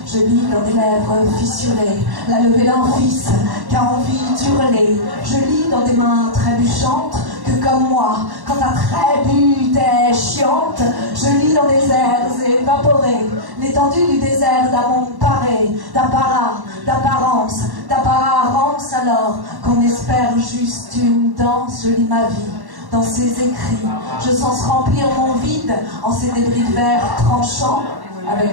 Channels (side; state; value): left; late; 1.1 ms